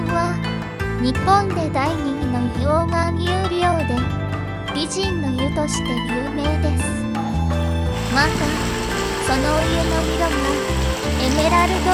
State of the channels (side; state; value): both; identical; correlation 1.00